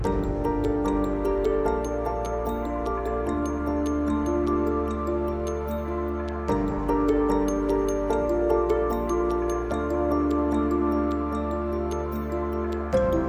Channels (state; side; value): identical; both; correlation 1.00